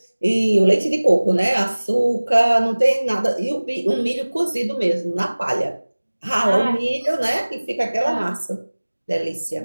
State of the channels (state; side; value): inverted; both; correlation -1.00